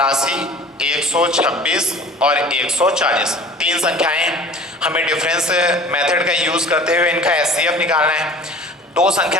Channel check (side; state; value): both; normal; correlation 0.44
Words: 126 और 140 तीन संख्याएं, हमें डिफरेंस मेथड का यूज करते हुए इनका एचसीएफ निकालना है। दो